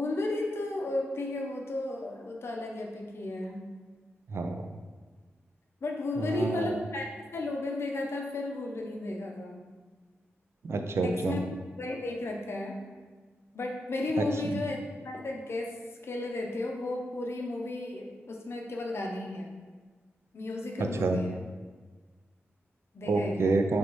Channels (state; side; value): normal; both; correlation 0.83